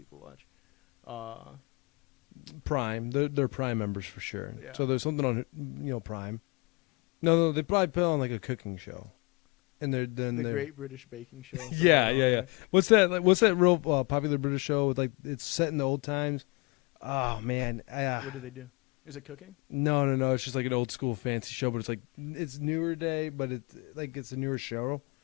watch? Prime. They're Prime members for sure. Yeah. So there's something on Prime. No, they probably put on like a cooking show. And The Great British Baking Show. throw Yeah, that on yeah. there. What's that? Like, what's that real popular British show with like it's set in the old times? Oh man, What do they do? Is it cooking? no. It's just like an old school fancy show, but it's newer day, but it's a newer show,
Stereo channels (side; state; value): right; quieter; 28.8 dB